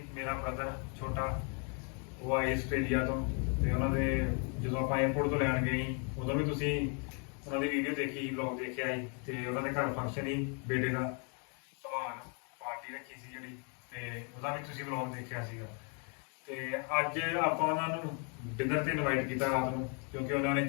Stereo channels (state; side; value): quieter; right; 38.1 dB